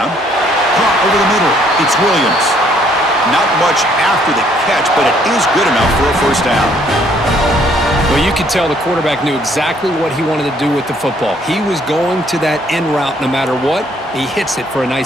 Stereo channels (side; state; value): both; normal; correlation 0.65